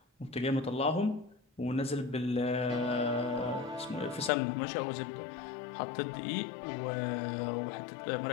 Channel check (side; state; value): right; drops out; at 4.3 s